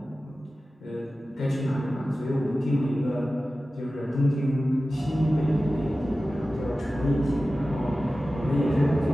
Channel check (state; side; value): normal; both; correlation 0.95